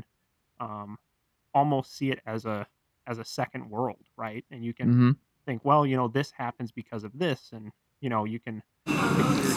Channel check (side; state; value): both; identical; correlation 1.00